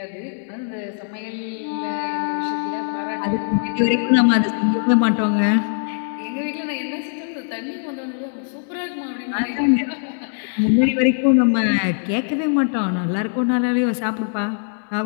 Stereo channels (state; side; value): silent; right; digital silence